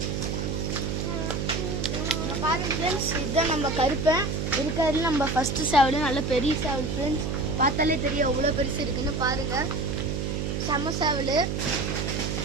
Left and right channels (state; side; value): noise; right; hum, 1 dB below the sound